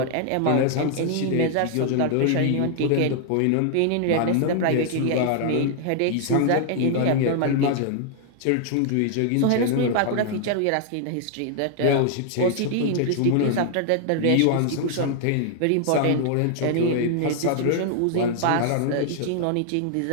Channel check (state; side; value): different; both; correlation 0.00